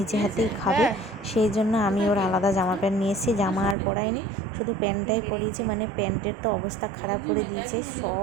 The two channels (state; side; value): drops out; left; at 3.8 s